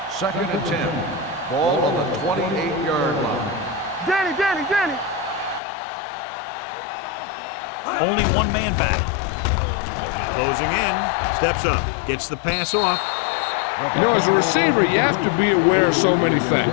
Second and 10. Ball on the 28-yard line. Danny. They soft, man. Only one man back. Closing in. Steps up. Gets the pass off. You know, as a receiver, you have to be aware of so many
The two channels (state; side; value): drops out; right; at 5.6 s